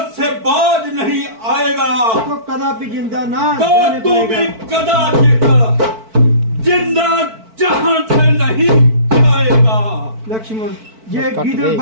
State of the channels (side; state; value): left; late; 4.5 ms